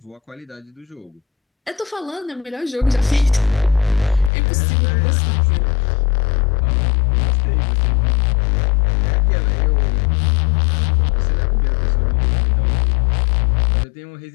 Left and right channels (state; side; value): drops out; right; at 4.3 s